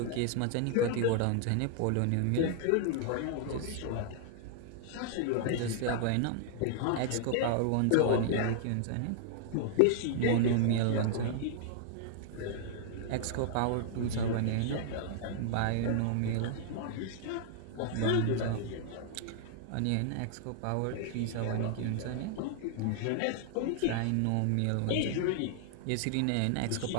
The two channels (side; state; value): both; different; correlation -0.01